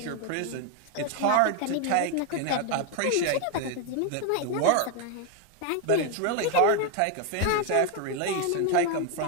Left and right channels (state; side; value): different; both; correlation 0.01